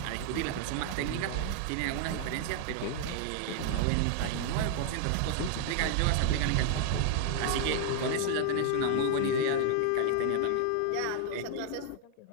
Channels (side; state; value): both; different; correlation 0.00